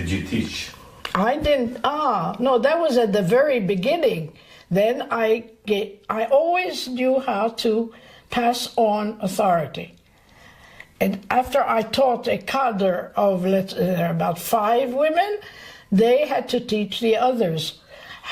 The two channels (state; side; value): identical; both; correlation 1.00